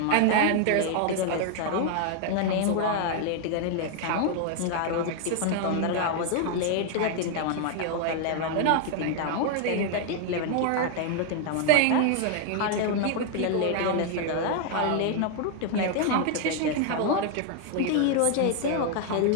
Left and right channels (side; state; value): both; different; correlation 0.00